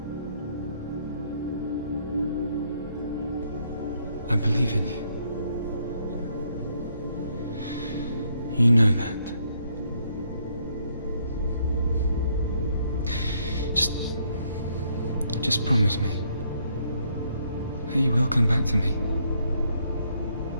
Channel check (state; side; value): inverted; both; correlation -0.71